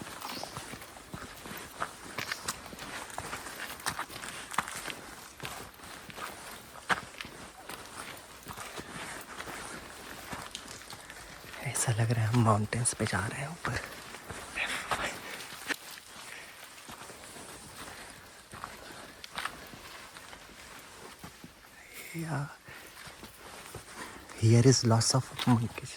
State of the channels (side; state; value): both; identical; correlation 1.00